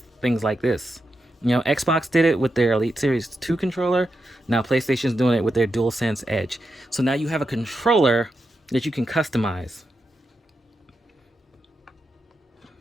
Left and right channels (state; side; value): normal; both; correlation 0.87